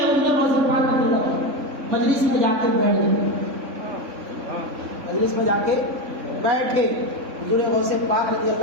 حضور غوث پاک رضی اللہ عنہ مجلس میں جا کے بیٹھ گئے، مجلس میں جا کے بیٹھے، حضور غوث پاک رضی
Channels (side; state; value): left; late; 3.6 ms